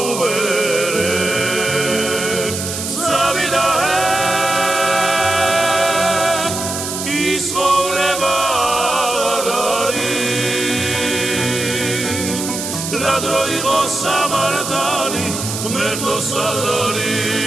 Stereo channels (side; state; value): right; noise; hiss, 5 dB below the sound